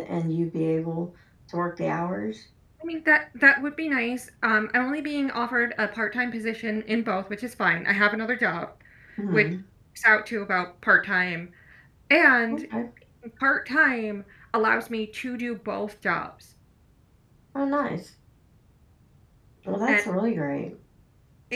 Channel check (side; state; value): both; identical; correlation 1.00